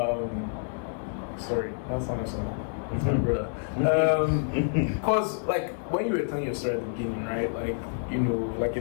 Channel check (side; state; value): right; silent; 59 dB below the other